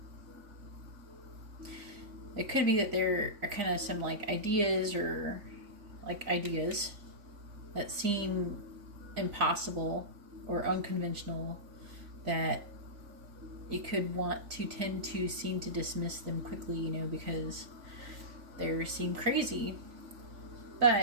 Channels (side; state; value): left; late; 3.5 ms